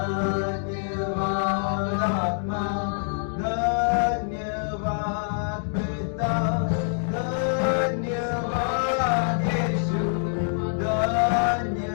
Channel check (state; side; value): silent; right; digital silence